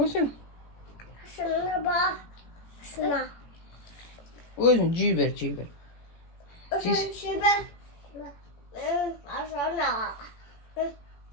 sen? Şuna bak. Şuna. Özün ciğer ver, ciğer ver. Şuna şuna. Şuna.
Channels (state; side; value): late; right; 18 ms